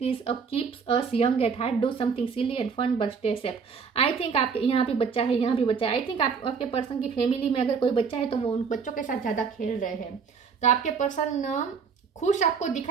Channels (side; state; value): left; quieter; 5.9 dB